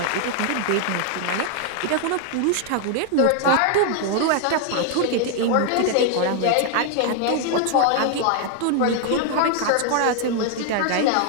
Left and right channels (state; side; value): different; both; correlation 0.00